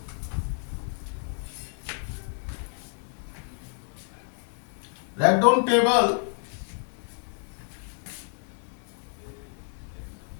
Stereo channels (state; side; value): silent; right; 58 dB below the other